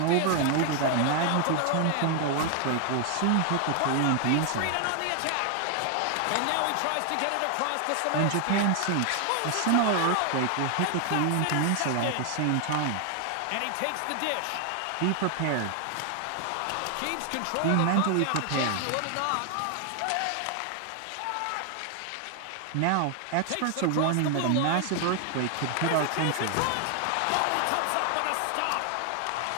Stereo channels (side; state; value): both; different; correlation 0.00